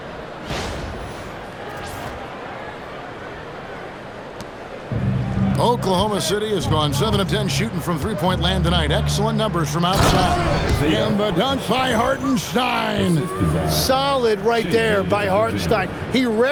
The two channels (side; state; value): both; identical; correlation 1.00